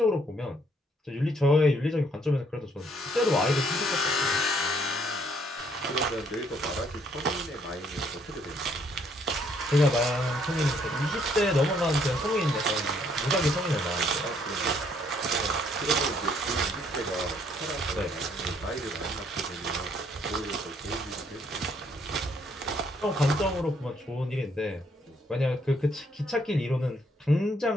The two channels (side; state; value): both; normal; correlation 0.67